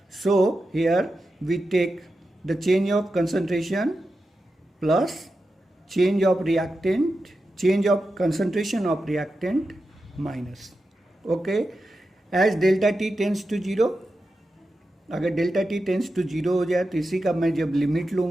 So here we take the change of concentration plus change of reactant, change of concentration of reactant minus. Okay, as delta t tends to 0, अगर डेल्टा टी टेंस टू 0 हो जाए तो इसी का मैं जब लिमिट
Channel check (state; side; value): normal; both; correlation 0.90